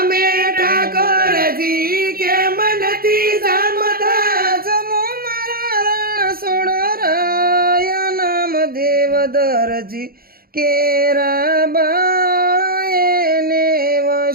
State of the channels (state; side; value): late; left; 0.43 ms